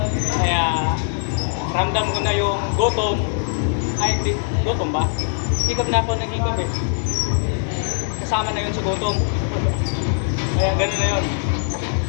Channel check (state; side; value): silent; right; digital silence